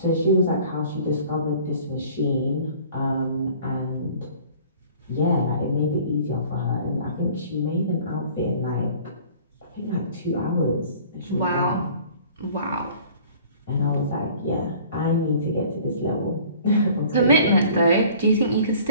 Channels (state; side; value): inverted; both; correlation -0.50